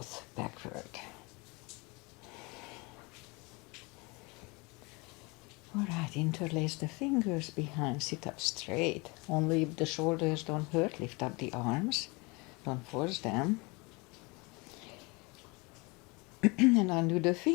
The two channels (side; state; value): right; quieter; 27.2 dB